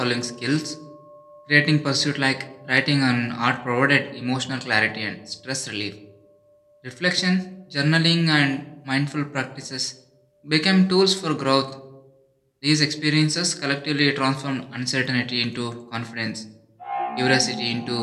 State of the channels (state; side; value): identical; both; correlation 1.00